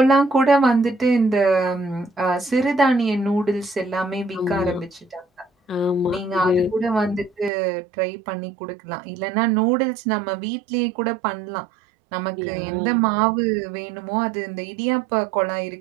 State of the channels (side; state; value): left; drops out; at 7.5 s